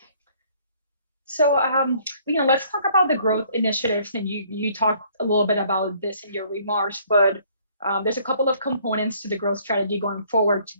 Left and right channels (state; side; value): inverted; both; correlation -0.61